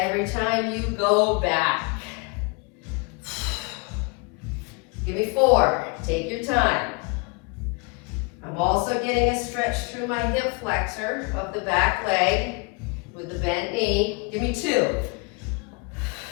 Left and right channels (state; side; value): quieter; right; 30.4 dB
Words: time you go back. Give me 4. Take your time. I'm also getting a stretch through my hip flexor of the back leg with the bent knee. Give me 2.